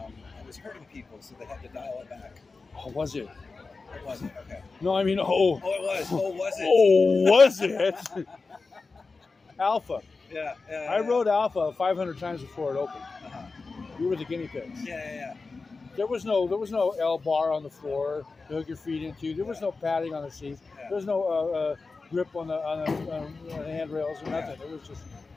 was hurting people, so they had to dial it back. Oh, was it? It wasn't? Okay. No, I mean, Oh, it was. Oh, was it? Oh, was it? Alpha. Yeah. I rode Alpha 500 times before it opened. Uh-huh. We were the guinea pigs. Yeah. There was no L bar on the floor to hook your feet into. There was no padding on the seats. Yeah. There was no grip on the handrails or nothing. It was just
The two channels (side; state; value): right; quieter; 4.1 dB